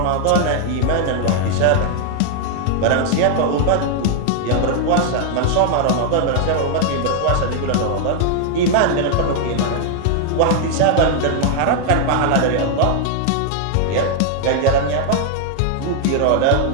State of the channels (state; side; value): different; both; correlation 0.00